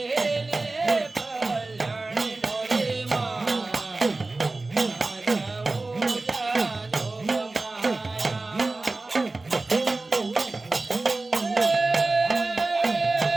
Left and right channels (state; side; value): quieter; left; 3.2 dB